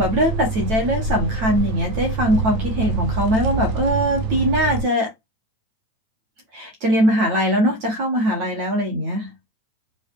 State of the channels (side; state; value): left; late; 9.1 ms